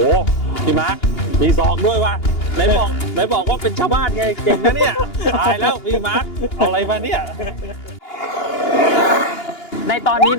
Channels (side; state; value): right; late; 2.8 ms